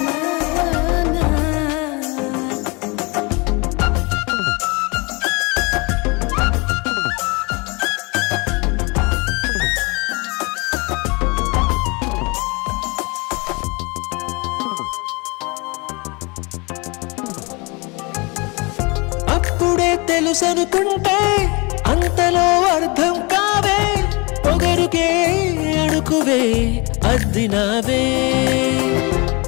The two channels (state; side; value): quieter; right; 28.1 dB